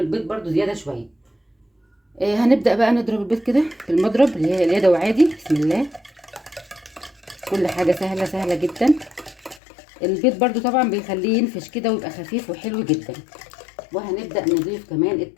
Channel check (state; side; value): drops out; right; at 9.6 s